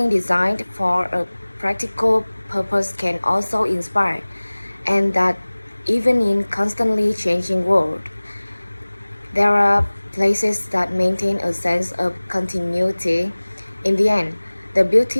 designed for a practical purpose can also inspire, and that even in constantly changing world, there are places that maintain a sense of continuity. In the end, the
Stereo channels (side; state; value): both; inverted; correlation -1.00